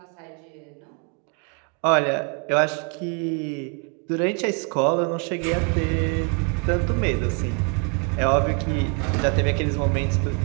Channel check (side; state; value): left; quieter; 37.0 dB